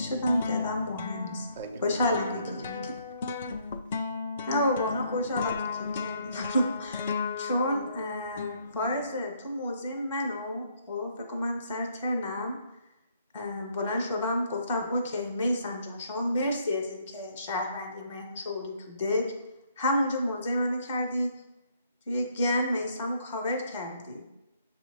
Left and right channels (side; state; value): both; inverted; correlation -0.68